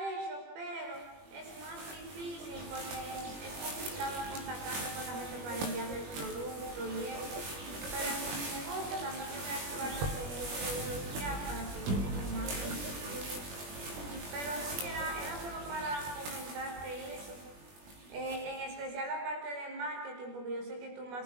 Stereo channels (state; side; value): late; left; 21 ms